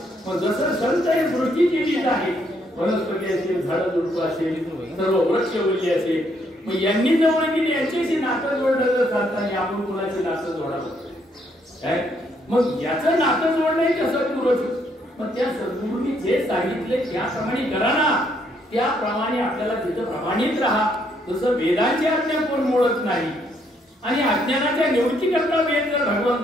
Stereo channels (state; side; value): normal; both; correlation 0.71